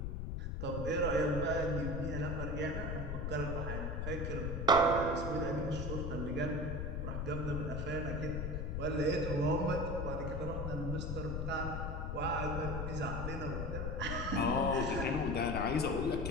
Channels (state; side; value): noise; left; rumble, 2 dB below the sound